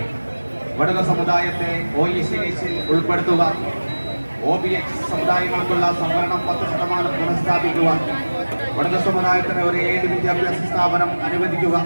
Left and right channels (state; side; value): inverted; both; correlation -1.00